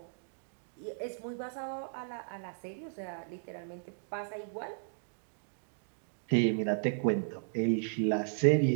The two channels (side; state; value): left; silent; digital silence